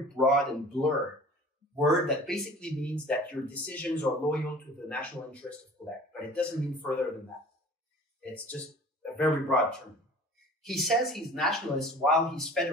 broad and blurred word that basically means that your decisions are loyal to the national interest of Quebec. But it doesn't mean further than that. It's just a very broad term. He says he's nationalist while he's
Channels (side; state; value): both; normal; correlation 0.44